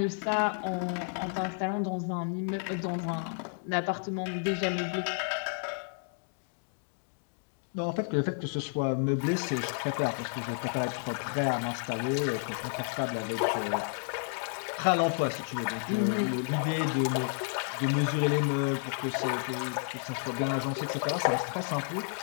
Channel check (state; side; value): silent; right; 57 dB below the other